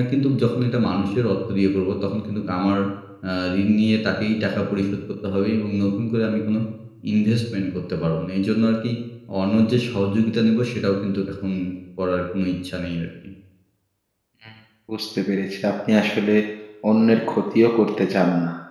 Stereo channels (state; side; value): identical; both; correlation 1.00